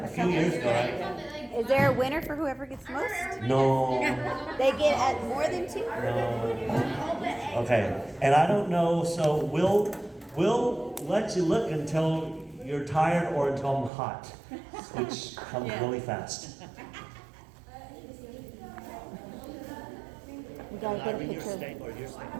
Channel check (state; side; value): drops out; left; at 13.9 s